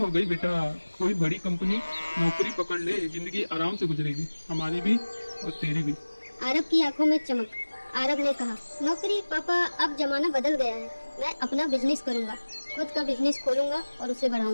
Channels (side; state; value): both; inverted; correlation -1.00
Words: गई बेटा। कोई बड़ी कंपनी नौकरी पकड़ ले, जिंदगी आराम से गुजरेगी, हमारी भी और तेरी भी। आरब की आंखों में चमक। आरब ने कहा, नौकरी पापा, अब जमाना बदल गया है। मैं अपना बिजनेस करूंगा, खुद का बिजनेस खोलूंगा और उसे